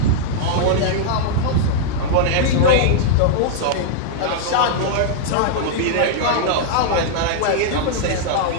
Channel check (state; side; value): different; both; correlation -0.01